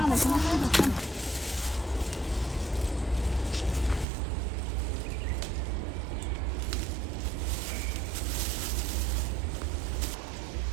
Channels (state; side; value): drops out; left; at 4.0 s